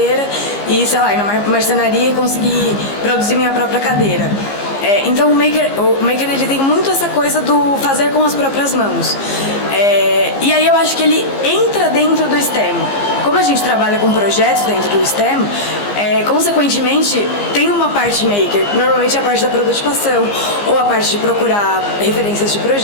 e, sei lá, ir numa marcenaria e conseguir produzir minha própria cadeira. Então o maker ele tem muito essa coisa do fazer com as próprias mãos. E aí eu acho que ele entra dentro do STEM. Como a gente trabalha com projetos dentro do STEM, consequentemente tem uma parte maker, normalmente a parte da prototipação ou a parte de procurar referências de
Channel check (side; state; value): right; late; 15 ms